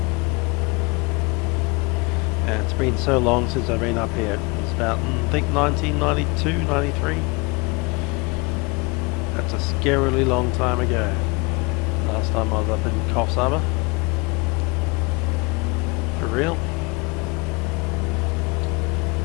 And it's been so long since I've been up here. It's about, I think, 1992, 93. That's a scarily long time ago. Last time I was up in Coffs Harbor. For real.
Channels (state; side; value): quieter; right; 27.1 dB